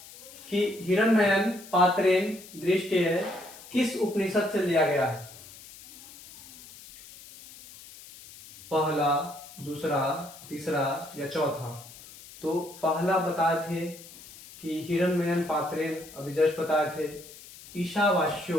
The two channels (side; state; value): left; noise; hiss, 18 dB below the sound